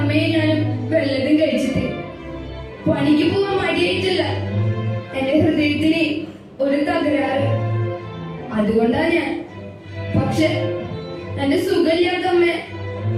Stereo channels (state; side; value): identical; both; correlation 1.00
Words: ഞാനും വല്ലതും കഴിച്ചിട്ട്. പണിക്ക് പോവാൻ മടിയായിട്ടില്ല. എന്റെ ഹൃദയത്തിന് ഒരു തകരാറ്. അതുകൊണ്ടാ ഞാൻ. പക്ഷെ എന്റെ സുഖമില്ലാത്ത അമ്മയെ